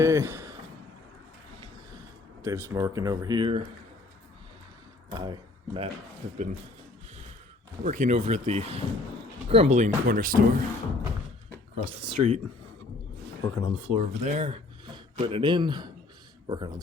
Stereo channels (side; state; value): right; quieter; 3.3 dB